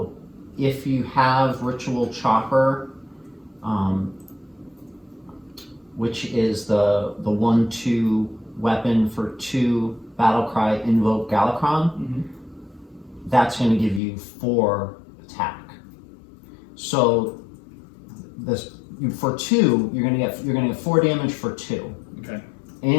if you have Ritual Chopper, which is the 1/2 weapon for 2 Battlecry Invoke Galakrond, Mm-hmm. that's going to give you 4 attack. So for 2, you're gonna get 4 damage for 2. Okay.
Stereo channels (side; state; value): right; drops out; at 14.0 s